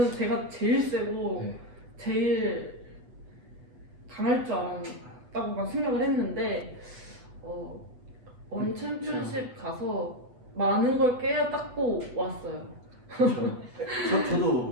제가 제일 세고 제일 강할 줄 알았다고만 생각을 했는데 원 챔피언십 가서 많은 걸 깨닫고 왔어요.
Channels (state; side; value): late; left; 8.1 ms